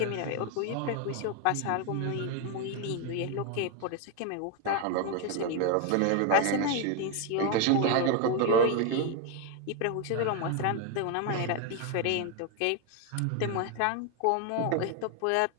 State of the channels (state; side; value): different; both; correlation 0.01